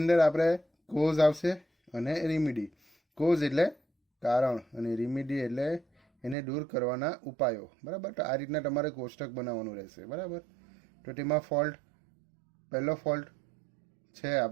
અંદર આપણે કોઝ આવશે અને રેમિડી. કોઝ એટલે કારણ અને રેમિડી એટલે એને દૂર કરવાના ઉપાયો, બરાબર. તો આ રીતના તમારે કોષ્ટક બનાવવાનું રહેશે, બરાબર. તો તેમાં પહેલો ફોલ્ટ છે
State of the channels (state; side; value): drops out; left; at 6.4 s